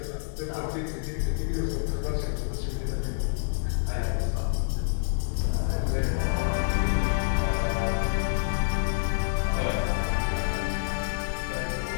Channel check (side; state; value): right; silent; digital silence